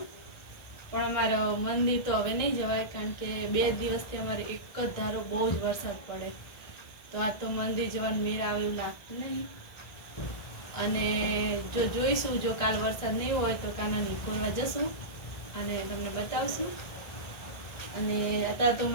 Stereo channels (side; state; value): right; late; 1.6 ms